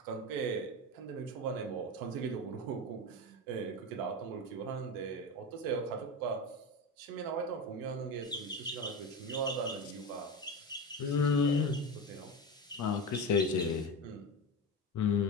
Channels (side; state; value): both; normal; correlation 0.21